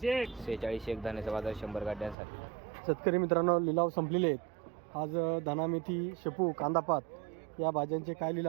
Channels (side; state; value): left; drops out; at 2.1 s